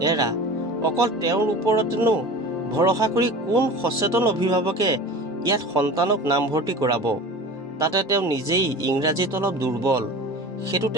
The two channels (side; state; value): both; normal; correlation 0.36